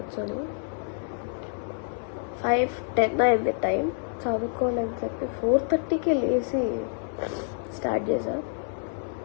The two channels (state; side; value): silent; right; 58 dB below the other